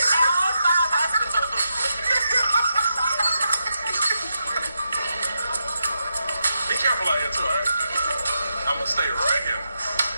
All 5 hospitals. Be careful out here, too, all right? I'm going to stay right here.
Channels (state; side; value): inverted; both; correlation -0.85